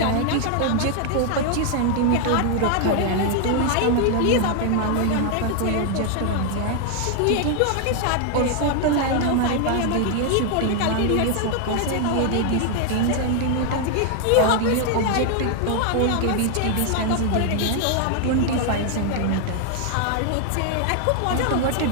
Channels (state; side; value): different; both; correlation 0.00